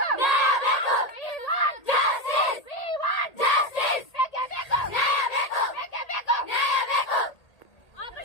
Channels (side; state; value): right; late; 1.8 ms